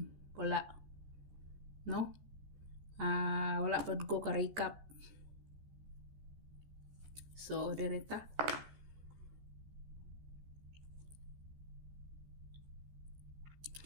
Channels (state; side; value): late; left; 14 ms